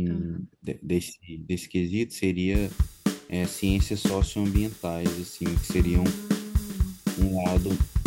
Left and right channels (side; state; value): both; identical; correlation 1.00